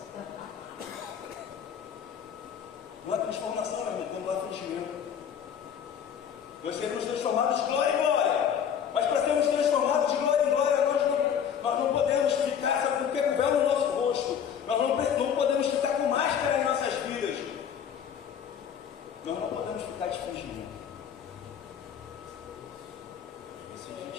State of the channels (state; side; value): quieter; right; 8.2 dB